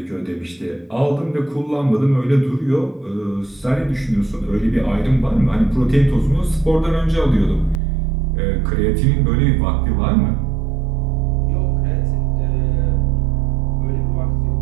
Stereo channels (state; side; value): drops out; left; at 7.8 s